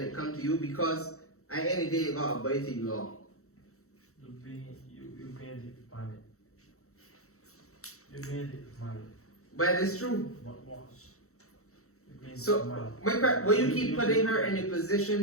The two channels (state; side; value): late; right; 0.64 ms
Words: it comes to you, because at the end of the day you got to abide the law. You being it, man. You being it, man. But it's true. But watch. So, will you keep putting her in a